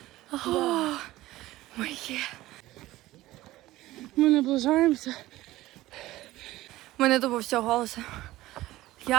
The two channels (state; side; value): quieter; left; 16.8 dB